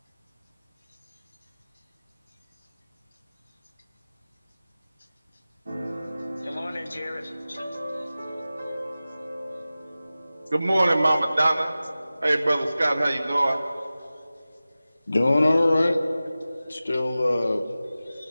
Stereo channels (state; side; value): inverted; both; correlation -0.96